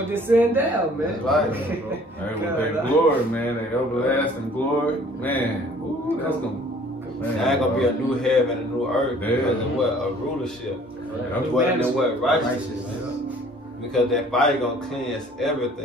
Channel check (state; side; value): normal; both; correlation 0.54